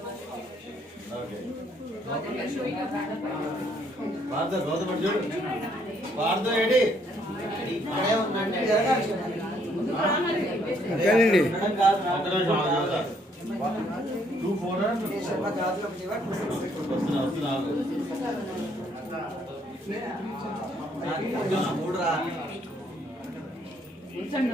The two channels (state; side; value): normal; both; correlation 0.68